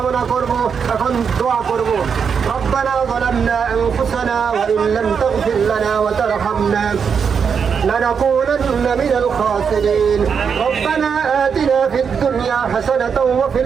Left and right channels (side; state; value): left; quieter; 6.5 dB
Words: করব, এখন দোয়া করব। রব্বানা যালামনা আনফুসানা ওয়া ইন লাম তাগফির লানা ওয়া তারহামনা لنكونن من الخاسرين. ربنا آتنا في الدنيا حسنة وفي